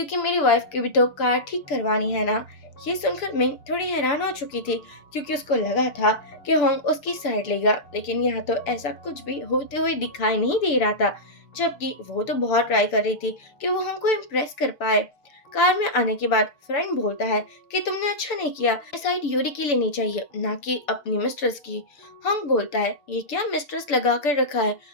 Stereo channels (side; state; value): right; late; 6.9 ms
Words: मेरी वाइफ की भी तो कार ठीक करवानी है ना। ये सुनकर मैं थोड़ी हैरान हो चुकी थी, क्योंकि उसको लगा था कि होंग उसकी साइड लेगा, लेकिन यहाँ तो ऐसा कुछ भी होते हुए दिखाई नहीं दे रहा था। जबकि वो तो बहुत ट्राई कर रही थी कि वो होंग को इम्प्रेस कर पाए। कार में आने के बाद फ्रेंड बोलता है कि तुमने अच्छा नहीं किया, साइड यूरी की लेनी चाहिए ना कि अपनी मिस्ट्रेस की। हम बोलता है, ये क्या मिस्ट्रेस लगा कर रखा है,